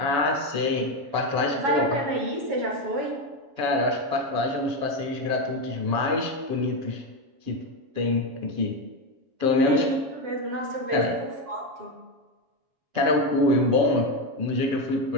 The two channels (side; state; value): left; late; 7.0 ms